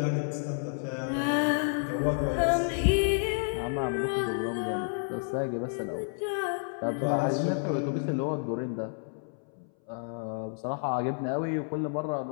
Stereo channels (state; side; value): silent; right; 58 dB below the other